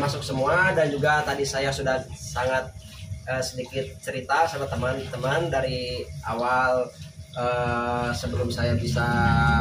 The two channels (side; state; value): both; identical; correlation 1.00